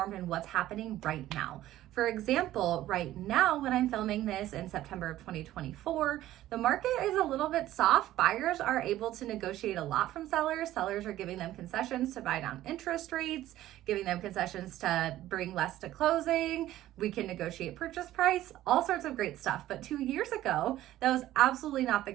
in what's happening right now. For example, right now when I'm filming this in September of 2024, the market is a little bit soft. Buyers are able to negotiate a lot from sellers. Sellers are giving them concessions to buy down interest rates, giving them concessions to bring less to closing. We can negotiate purchase price, all sorts of great stuff. But 2 years ago, that was absolutely not the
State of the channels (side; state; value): left; quieter; 14.3 dB